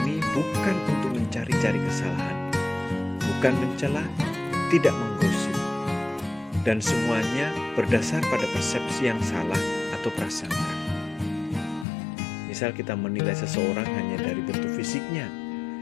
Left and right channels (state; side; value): drops out; right; at 11.9 s